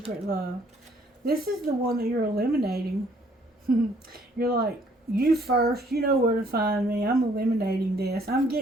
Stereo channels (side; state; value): both; normal; correlation 0.63